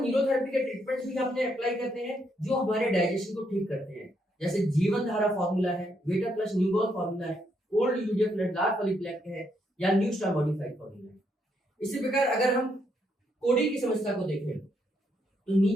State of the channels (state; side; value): normal; both; correlation 0.76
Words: न्यूरोथेरेपी के ट्रीटमेंट्स भी अपने अप्लाई करते हैं, जो हमारे डाइजेशन को ठीक करते हैं। जैसे जीवन धारा फॉर्मूला है, वेटा प्लस न्यूबॉल फॉर्मूला है, ओल्ड यूजेफ डार्क पॉलीप्लेक है, या न्यू स्टार मॉडिफाइड फॉर्मूला है। इसी प्रकार अगर हम कोड़ी की समस्या को देखें, तो